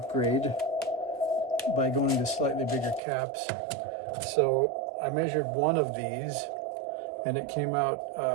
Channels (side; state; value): left; drops out; at 3.0 s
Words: by going to slightly bigger caps. So I measured one of these, and it came out